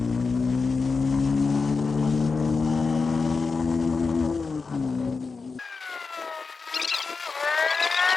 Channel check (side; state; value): right; quieter; 4.5 dB